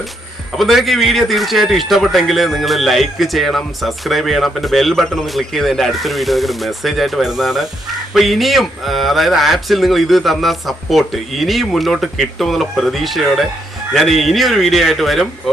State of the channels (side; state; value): both; normal; correlation 0.76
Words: അപ്പോൾ നിങ്ങൾക്ക് ഈ വീഡിയോ തീർച്ചയായിട്ടും ഇഷ്ടപ്പെട്ടെങ്കിൽ നിങ്ങൾ ലൈക്ക് ചെയ്യണം, സബ്സ്ക്രൈബ് ചെയ്യണം, പിന്നെ ബെൽ ബട്ടൺ ഒന്ന് ക്ലിക്ക് ചെയ്ത് എൻ്റെ അടുത്തൊരു വീഡിയോ നിങ്ങൾക്ക് മെസ്സേജ് ആയിട്ട് വരുന്നതാണ്. അപ്പോൾ ഇനിയും അതായത് ആപ്സിൽ നിങ്ങൾ ഇത് തന്ന സപ്പോർട്ട് ഇനിയും മുന്നോട്ട് കിട്ടുമെന്നുള്ള പ്രതീക്ഷയോടെ ഞാൻ ഇനിയൊരു വീഡിയോ ആയിട്ട് വരും.